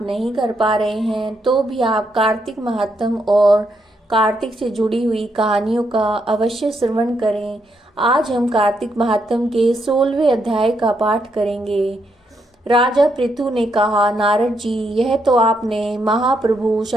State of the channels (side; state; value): both; normal; correlation 0.78